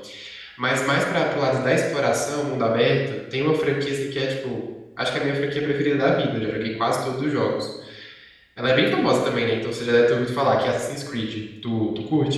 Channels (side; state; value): both; identical; correlation 1.00